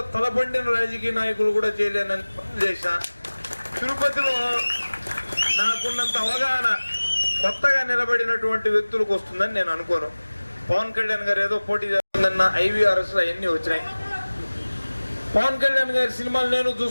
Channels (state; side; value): inverted; both; correlation -1.00